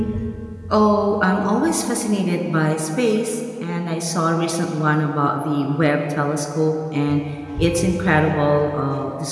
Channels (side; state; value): both; identical; correlation 1.00